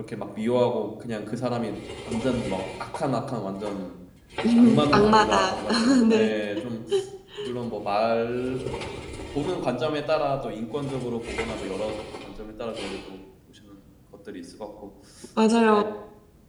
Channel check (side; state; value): both; identical; correlation 1.00